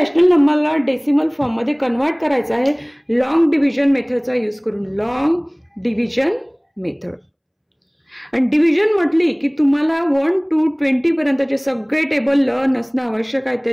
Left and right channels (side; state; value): both; identical; correlation 1.00